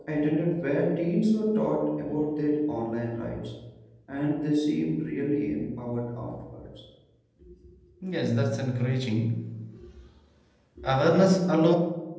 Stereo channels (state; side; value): identical; both; correlation 1.00